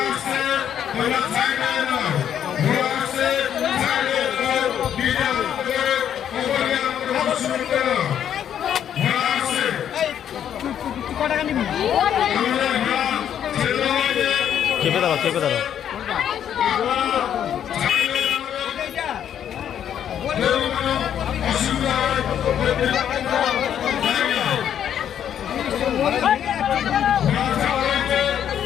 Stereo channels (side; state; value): right; quieter; 9.5 dB